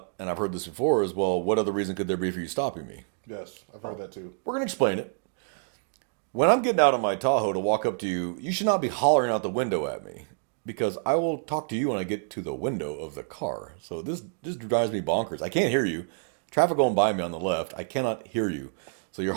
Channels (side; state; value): left; silent; digital silence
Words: and I've heard this before, is, well, what other reason could there be for you stopping me? Yes, I've heard that too. We're going to explain it. When I'm getting out of my Tahoe to walk up to you, you should not be hollering out the window at me because I will talk to you when I get to the window of the car. So this drives me bonkers. I can't hear you. Traffic going by me on the left. I cannot hear you. So you're